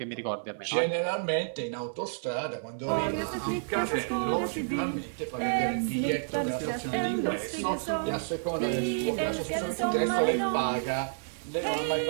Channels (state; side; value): silent; left; digital silence